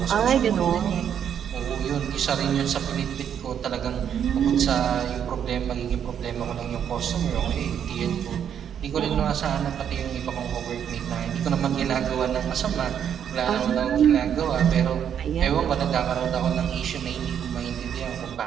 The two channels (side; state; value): left; quieter; 8.8 dB